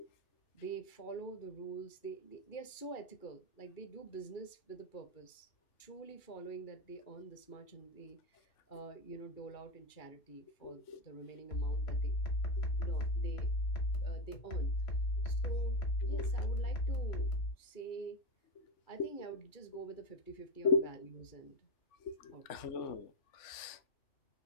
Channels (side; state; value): right; late; 2.4 ms